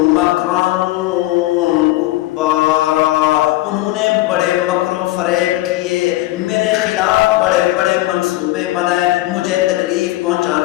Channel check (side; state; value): right; quieter; 17.4 dB